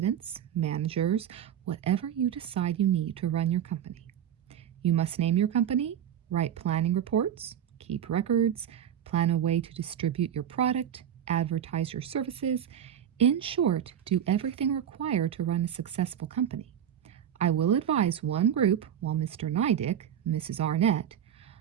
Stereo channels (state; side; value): quieter; left; 9.6 dB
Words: managers, whatever you decide you need to run your company. You must name your company, write planning reports, keep records, plan a way to distribute your product, advertise your services. In short, do everything required to run a successful company. I will advise one group while Mr. Nydick, Mrs. Arnett.